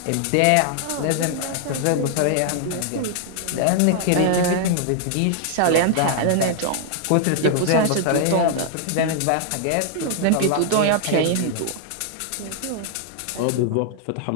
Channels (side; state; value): both; different; correlation -0.01